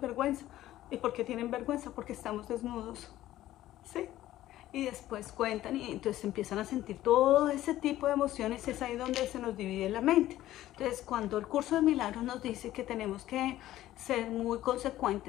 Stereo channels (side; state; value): right; quieter; 14.3 dB